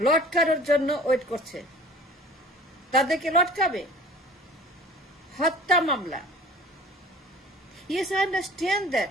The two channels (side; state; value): both; normal; correlation 0.45